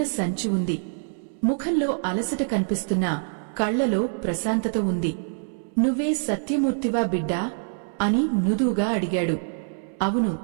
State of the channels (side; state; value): left; silent; 62 dB below the other